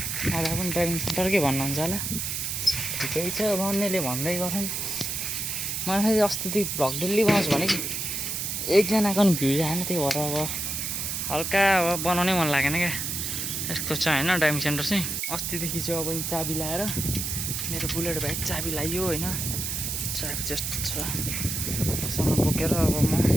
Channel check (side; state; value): right; noise; hiss, 2 dB below the sound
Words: अब पनि ड्राइभिङ सेन्टरकै भन्नुहुन्छ होला ठिकै छ भन्नेले भन्दै गर्छन् मलाई फेरि अस्तिदेखि भ्लग डेली बनाउँछु भने एकजनाको पनि भ्युज आएन त्यही भएर अब हल्का अब बनाउनै मन लागेन क्या यस्तो छ होइन ड्राइभिङ सेन्टर चाहिँ अस्तिदेखि चाहिँ अब चाबी लाएर मेरो बुलेट बाइक चाबी लाइयो होइन चाबी जस्तो छ सँग बोकेर अब म